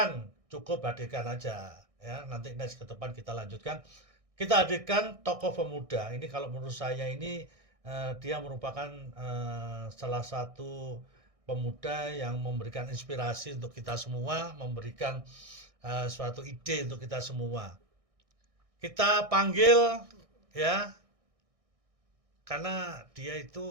cukup hadirkan aja, ya, nanti next ke depan kita lanjutkan. Kita hadirkan tokoh pemuda, ini kalau menurut saya ini dia merupakan salah satu pemuda yang memberikan inspirasi untuk kita semua, memberikan suatu ide untuk kita semua. Kita panggil, ya, karena dia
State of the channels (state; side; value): late; left; 1.6 ms